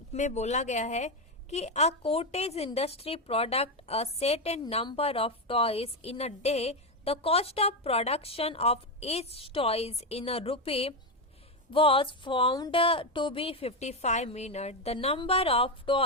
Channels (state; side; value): normal; both; correlation 0.09